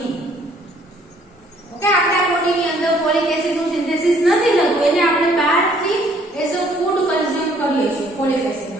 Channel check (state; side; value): normal; both; correlation 0.62